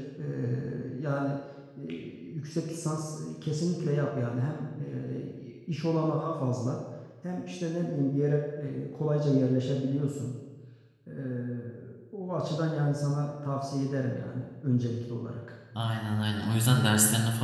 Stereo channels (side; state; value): both; identical; correlation 1.00